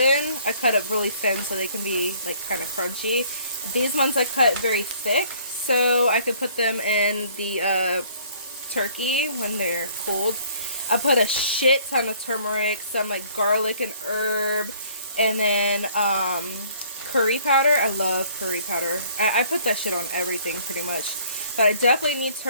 I cut it really thin so they can be like kind of crunchy. These ones I cut very thick so I could put them in the turkey when they're cooled. I put a shit ton of turmeric, some like garlic and herb, and then curry powder. I love curry powder. I put that shit on everything pretty much. But I definitely need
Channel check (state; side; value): inverted; both; correlation -0.58